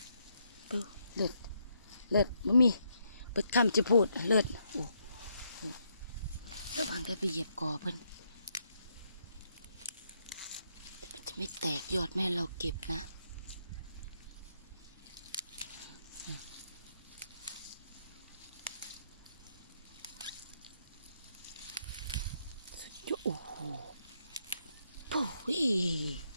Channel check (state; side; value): inverted; both; correlation -0.76